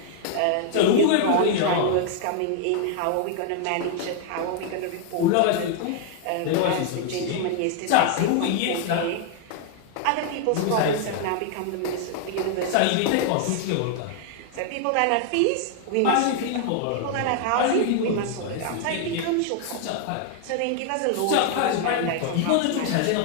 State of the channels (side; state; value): both; different; correlation 0.00